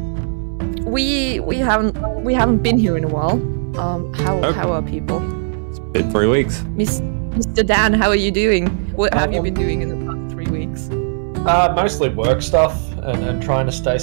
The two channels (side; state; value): left; silent; 62 dB below the other